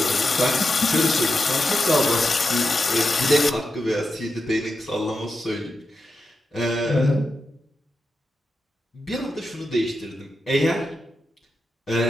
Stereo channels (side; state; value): both; normal; correlation 0.88